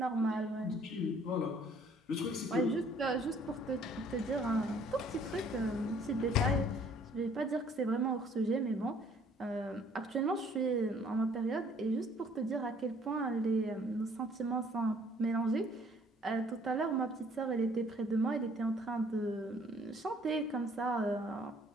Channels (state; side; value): normal; both; correlation 0.59